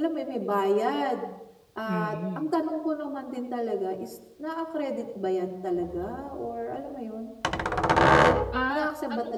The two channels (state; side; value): identical; both; correlation 1.00